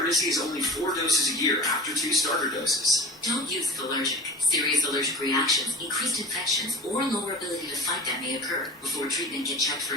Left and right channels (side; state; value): both; normal; correlation 0.36